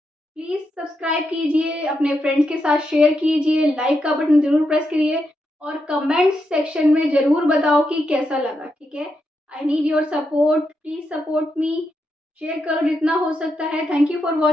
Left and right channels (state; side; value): normal; both; correlation 0.83